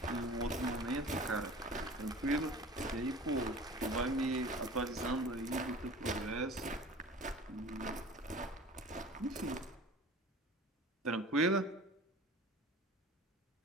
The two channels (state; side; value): normal; both; correlation 0.41